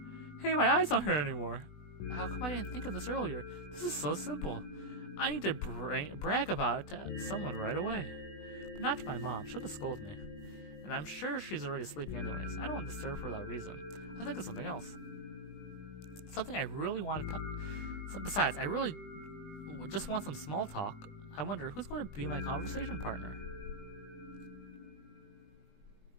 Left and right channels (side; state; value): right; late; 20 ms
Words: Hey, my eyes don't hurt anymore. How come I didn't think of this earlier? This is so simple. I need to brag about it to someone right away. But not to my mom. She'll just scold me. And I'm sure she's already sleeping anyways. I don't want to disturb her without reason. I think of something else. Something I really want to talk. Besides, I really just want some small talk. I wonder who's going to be my conversation partner.